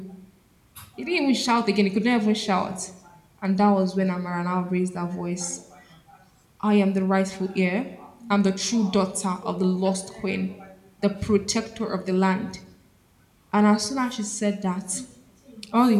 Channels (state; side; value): identical; both; correlation 1.00